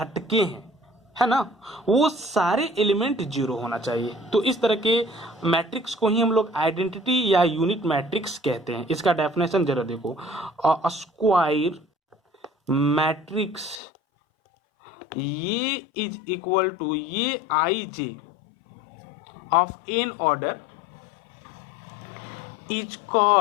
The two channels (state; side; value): drops out; right; at 13.8 s